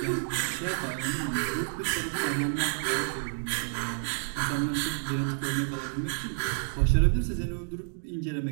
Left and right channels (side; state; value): left; silent; digital silence